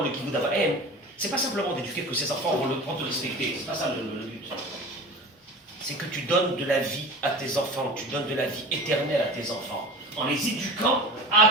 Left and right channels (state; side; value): normal; both; correlation 0.36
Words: le kibbutz d'Abraham, c'est pas simplement d'éduquer que ses enfants vont te respecter, c'est pas ça le but. C'est que tu donnes de la vie à tes enfants, tu donnes de la vie éternelle à tes enfants, en les éduquant